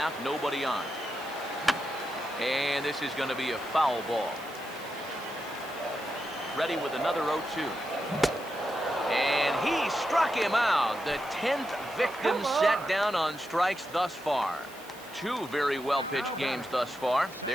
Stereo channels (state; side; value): noise; right; hiss, 20 dB below the sound